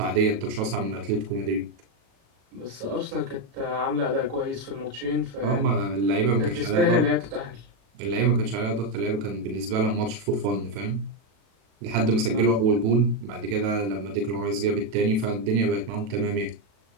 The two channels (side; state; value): left; late; 37 ms